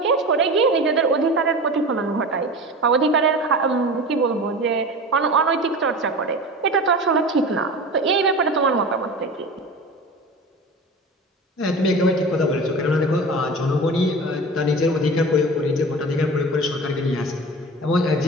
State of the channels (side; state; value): both; normal; correlation 0.33